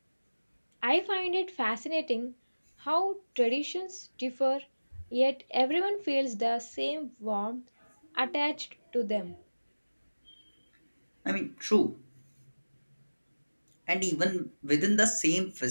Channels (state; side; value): inverted; both; correlation -1.00